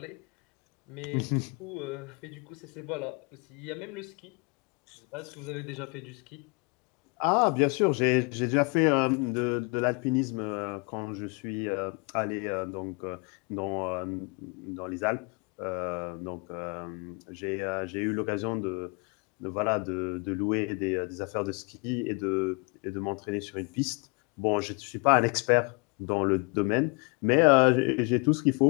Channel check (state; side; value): quieter; right; 31.4 dB